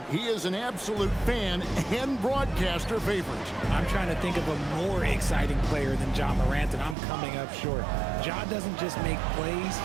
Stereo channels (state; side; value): drops out; left; at 7.0 s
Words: He is an absolute fan and broadcaster favorite. I'm trying to think of a more exciting player than Ja Morant, and I'm coming up short. Ja doesn't just make plays,